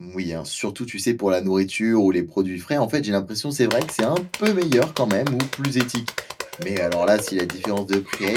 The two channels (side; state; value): both; identical; correlation 1.00